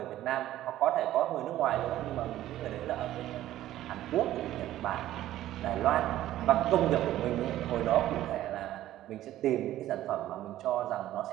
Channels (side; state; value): left; quieter; 13.8 dB